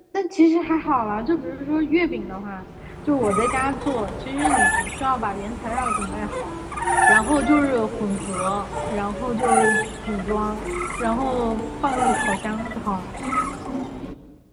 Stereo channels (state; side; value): identical; both; correlation 1.00